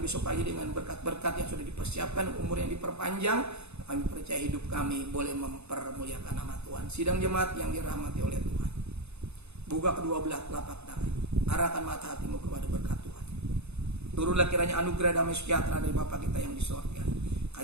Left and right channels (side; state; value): left; late; 0.80 ms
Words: pagi dengan berkat-berkat yang sudah dipersiapkan, umur yang diperpanjang. Kami percaya hidup kami boleh mempermuliakan nama Tuhan. Sidang jemaat yang dirahmati oleh Tuhan, buka kedua belah telapak tangan, arahkan mata hatimu kepada berkat Tuhan. Turunlah kiranya anugerah damai sejahtera dari Bapa kita yang di surga,